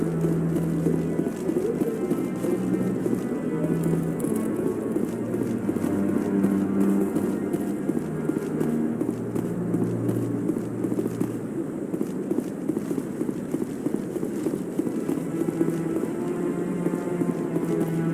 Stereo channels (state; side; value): identical; both; correlation 1.00